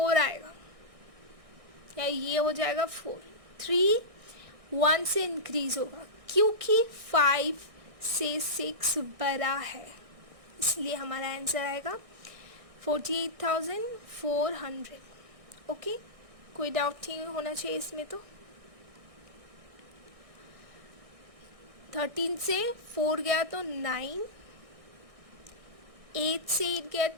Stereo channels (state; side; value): late; left; 1.6 ms